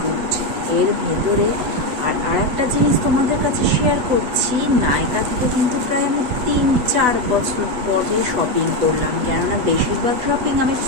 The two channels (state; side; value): late; left; 8.1 ms